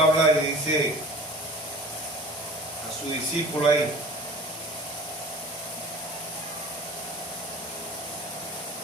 y dice a su discípulo ahí:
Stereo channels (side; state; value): both; normal; correlation 0.42